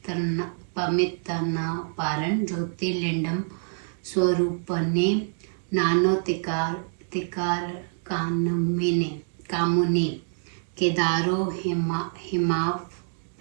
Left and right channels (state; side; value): silent; left; digital silence